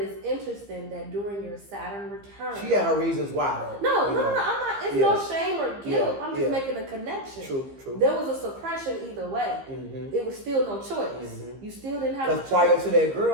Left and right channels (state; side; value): late; left; 15 ms